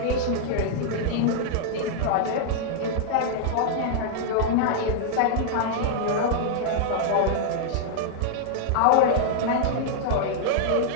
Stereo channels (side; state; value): both; different; correlation -0.01